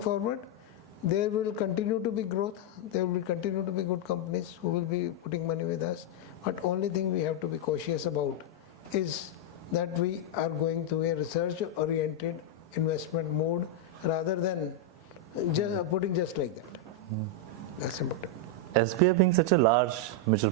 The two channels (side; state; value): both; normal; correlation -0.01